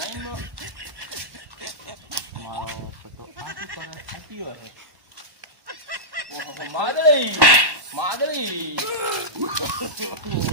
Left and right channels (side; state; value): left; late; 1.1 ms